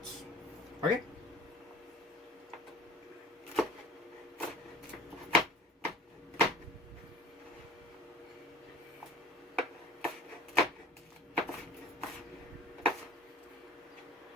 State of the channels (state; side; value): normal; both; correlation 0.43